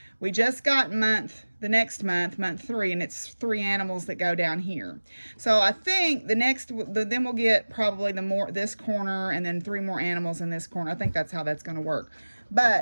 We just got the next month, month 3, and it's 3 animals that go down here. So I think then we'll get probably this corner and then 3 more animals in this corner. I think that's how that's going to work.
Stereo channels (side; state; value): both; inverted; correlation -1.00